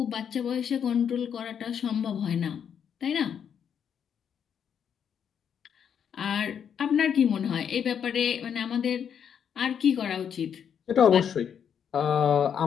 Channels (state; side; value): quieter; right; 8.0 dB